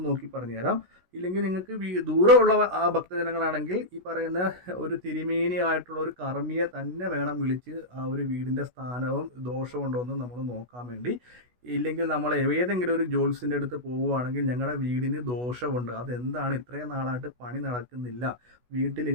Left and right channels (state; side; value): late; left; 16 ms